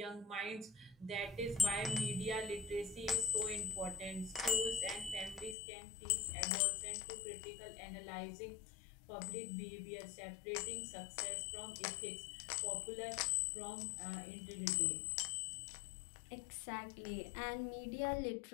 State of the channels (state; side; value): drops out; right; at 5.6 s